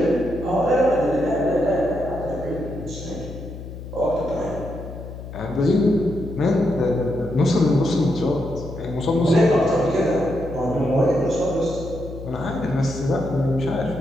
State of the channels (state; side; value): noise; left; hum, 11 dB below the sound